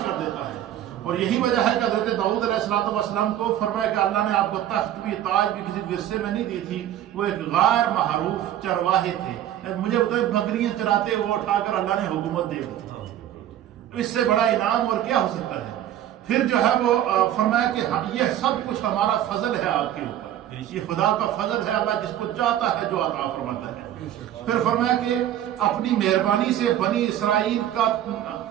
کر دیتا ہے۔ اور یہی وجہ ہے کہ حضرت داؤد علیہ السلام کو فرمایا کہ اللہ نے آپ کو تخت بھی، تاج بھی کسی ورثے میں نہیں دی تھی، وہ ایک غیر معروف چرواہے تھے، مجھے بتائیں بکریاں چراتے وہ اٹھا کر اللہ نے حکومت دے دی، اس سے بڑا انعام اور کیا ہو سکتا ہے؟ پھر جو ہے وہ فرمایا کہ یہ سب کچھ ہمارا فضل ہے آپ کے اوپر، یہ خدا کا فضل ہے، اللہ جس کو چاہتا ہے جو عطا فرماتا ہے۔ پھر فرمایا کہ اپنی مہربانی سے بنی اسرائیل کا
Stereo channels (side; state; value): left; quieter; 11.8 dB